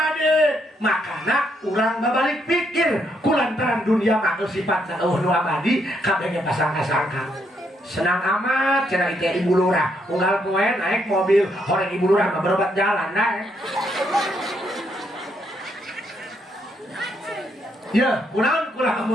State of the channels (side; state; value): both; normal; correlation 0.75